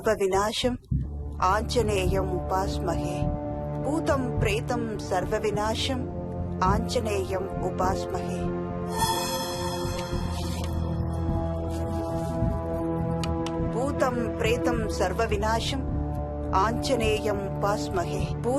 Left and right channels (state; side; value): identical; both; correlation 1.00